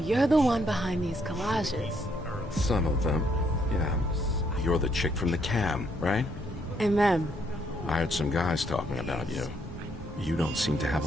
you're the one behind these collages. Some of them, yeah. You're the chick from the cam, right? MM. I heard some guys talking about you. You don't seem to have a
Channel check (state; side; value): normal; both; correlation 0.72